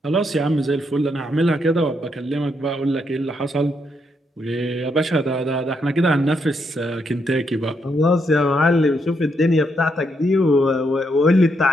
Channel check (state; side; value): normal; both; correlation 0.78